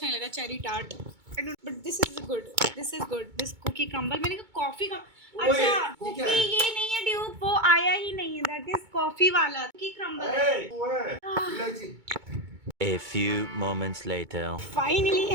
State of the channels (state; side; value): late; left; 2.2 ms